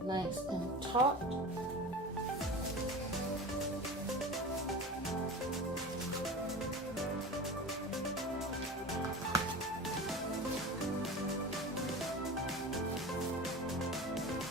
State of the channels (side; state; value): both; normal; correlation 0.32